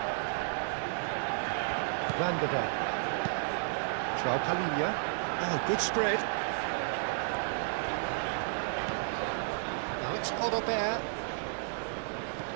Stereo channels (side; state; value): left; silent; digital silence